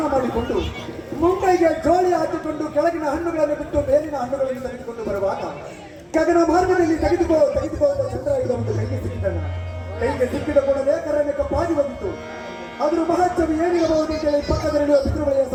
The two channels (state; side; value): identical; both; correlation 1.00